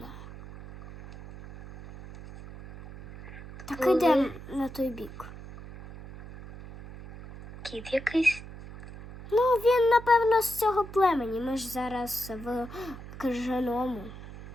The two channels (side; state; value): right; noise; hum, 14 dB below the sound